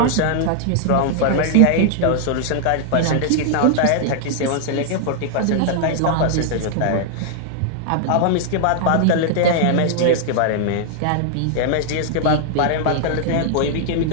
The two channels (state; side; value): different; both; correlation 0.00